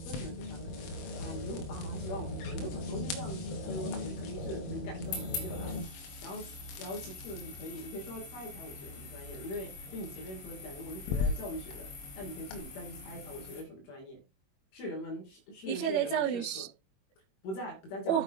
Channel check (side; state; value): right; late; 21 ms